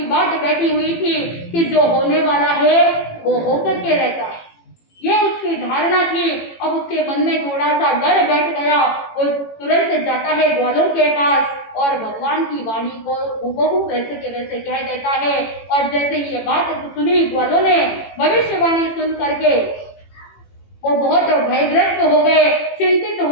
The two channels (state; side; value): late; right; 18 ms